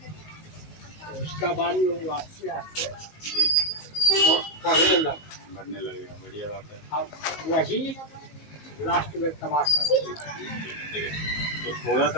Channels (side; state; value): right; late; 19 ms